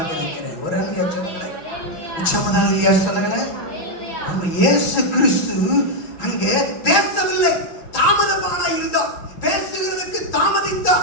இருக்கிறேன். ஒரு அல்லையா சொல்லுங்களேன், சம்மதாலியா சொல்லுங்களேன். நம்ம இயேசு கிறிஸ்து அங்கே பேசவில்லை, தாமதமானா இருந்தார். பேசுகிறதுக்கு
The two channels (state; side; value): late; right; 6.1 ms